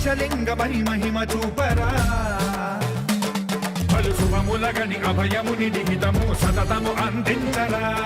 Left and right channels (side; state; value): both; identical; correlation 1.00